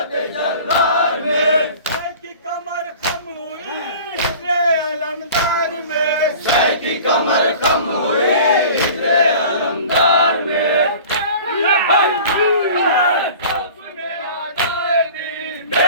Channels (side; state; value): both; inverted; correlation -0.42